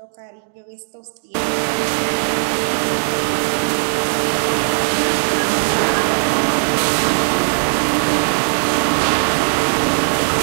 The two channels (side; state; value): left; silent; digital silence